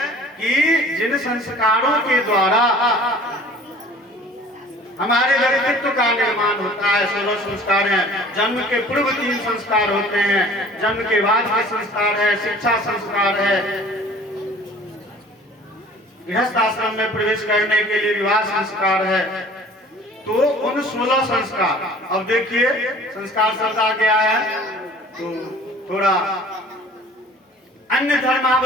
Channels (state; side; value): normal; both; correlation 0.48